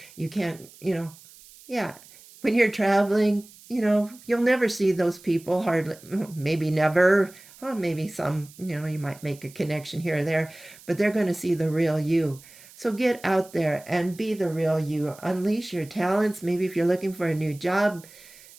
you can't, yeah. When you're traveling, you'll never see those people, hardly, maybe never. Maybe some, you might make a connection here or there, but they're going to see the real you. So get out there and be the real you. Unleash your talents. Maybe if you're looking for a new job,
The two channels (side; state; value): right; noise; hiss, 22 dB below the sound